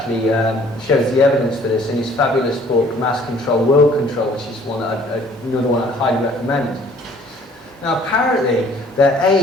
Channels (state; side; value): normal; both; correlation 0.56